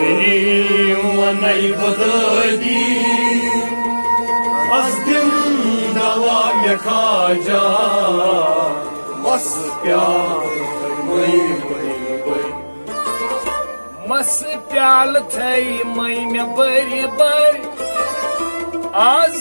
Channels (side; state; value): both; inverted; correlation -1.00